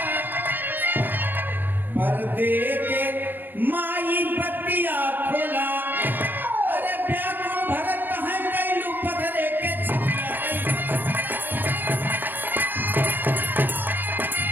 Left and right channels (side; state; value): left; late; 0.092 ms